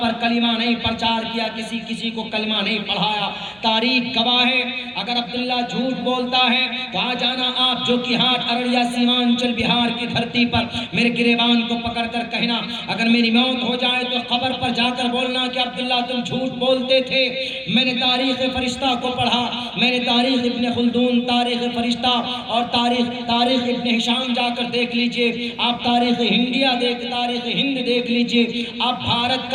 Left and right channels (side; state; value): right; noise; hum, 27 dB below the sound